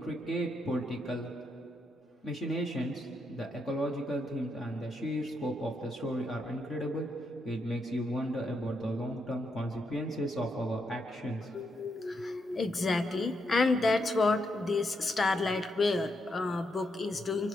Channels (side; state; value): both; normal; correlation 0.80